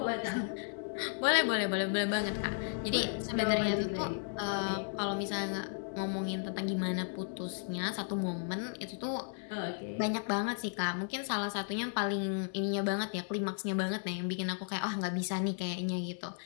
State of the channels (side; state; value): right; silent; digital silence